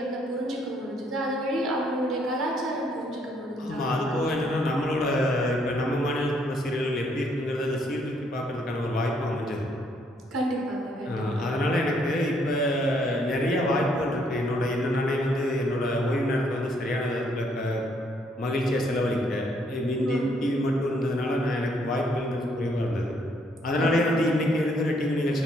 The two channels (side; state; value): both; normal; correlation 0.69